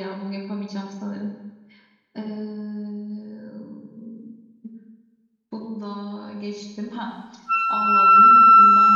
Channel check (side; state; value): both; identical; correlation 1.00